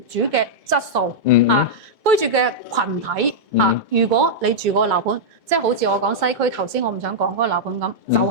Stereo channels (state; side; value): normal; both; correlation -0.07